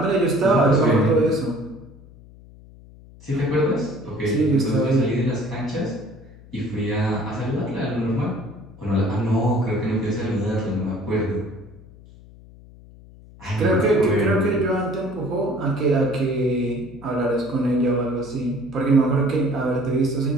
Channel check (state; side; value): noise; left; hum, 21 dB below the sound